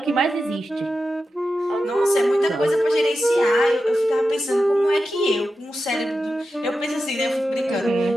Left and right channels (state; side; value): normal; both; correlation 0.91